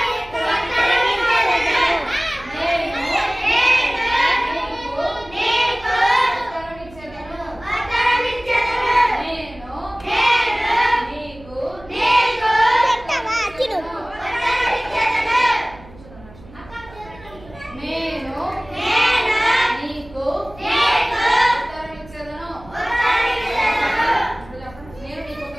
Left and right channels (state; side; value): noise; right; hum, 21 dB below the sound